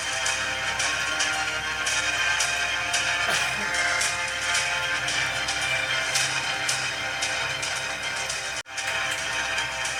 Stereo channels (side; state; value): both; identical; correlation 1.00